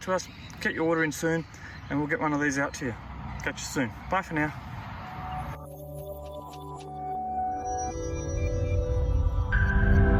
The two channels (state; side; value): identical; both; correlation 1.00